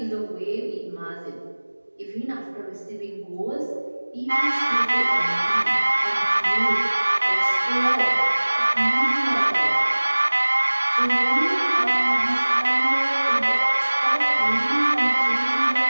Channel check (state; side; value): inverted; both; correlation -1.00